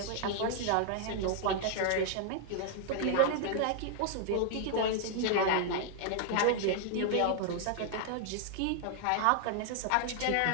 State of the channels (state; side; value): different; both; correlation -0.01